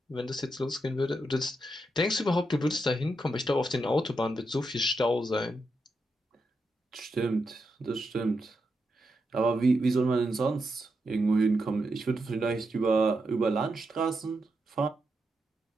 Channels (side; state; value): both; normal; correlation 0.84